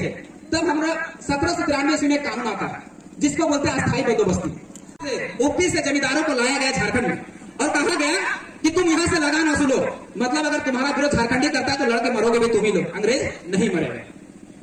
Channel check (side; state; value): both; identical; correlation 1.00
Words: तब हमारा 1793 ईस्वी में कानून आता है जिसको बोलते हैं अस्थायी बंदोबस्ती। ऊपी से जमींदारों को लाया गया झारखंड में और कहा गया कि तुम यहाँ से लगान वसूलो, मतलब अगर तुम्हारा विरोध झारखंडी करता है तो लड़के मरोगे भी तुम ही लोग, अंग्रेज नहीं मरेंगे।